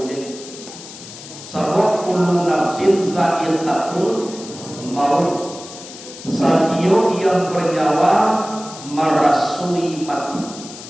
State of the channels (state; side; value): noise; left; hiss, 15 dB below the sound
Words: jadi. Sabab kullu nafsin za'iqatul maut. Satio yang bernyawa merasui mati.